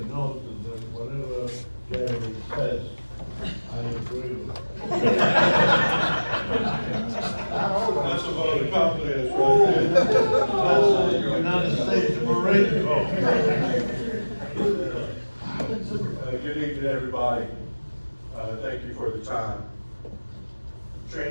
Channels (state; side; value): inverted; both; correlation -1.00